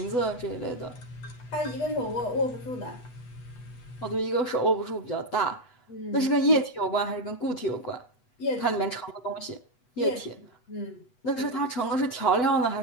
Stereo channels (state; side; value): late; right; 8.1 ms